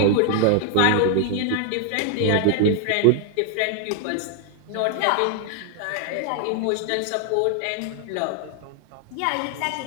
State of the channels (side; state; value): both; different; correlation 0.00